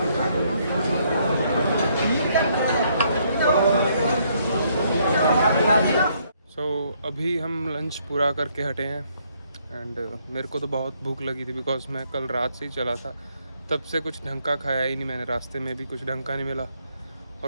अभी हम लंच पूरा करके हटे हैं। एंड मेरे को तो बहुत भूख लगी थी, बिकॉज मैं कल रात से ही चला था, तब से कुछ ढंग का खाया ही नहीं मैंने। रास्ते में भी कुछ ढंग का नहीं मिला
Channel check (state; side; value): inverted; both; correlation -0.70